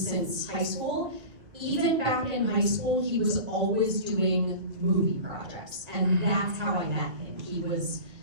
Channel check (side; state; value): left; late; 2.3 ms